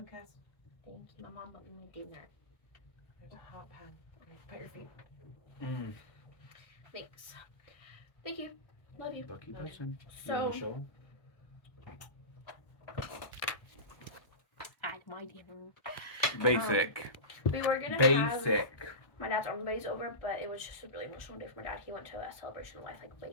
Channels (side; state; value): right; late; 1.2 ms